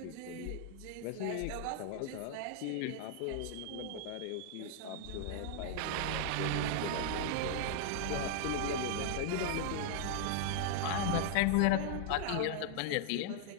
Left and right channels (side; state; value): both; different; correlation -0.01